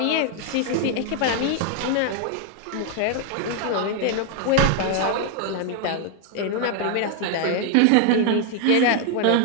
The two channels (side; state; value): both; different; correlation 0.00